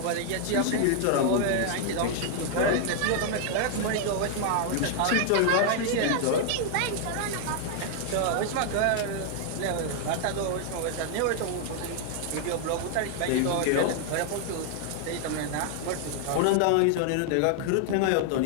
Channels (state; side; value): different; both; correlation 0.00